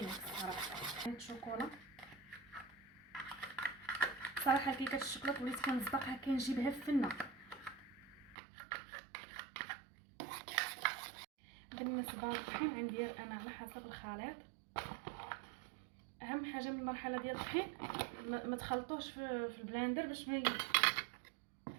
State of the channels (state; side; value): drops out; left; at 8.3 s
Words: صراحه. هاد الشوكولا صراحه كيكه الشوكولاط وليت كنصدقها كنجيبها في فنه. بالنسبه للطحين غندير انا على حسب الخليط. اهم حاجه من المرحله ديال الطحين ما تخلطوش في البلاندر باش